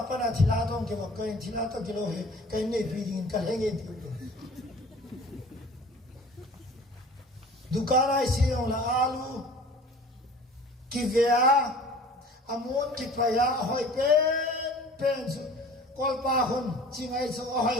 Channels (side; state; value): both; normal; correlation 0.45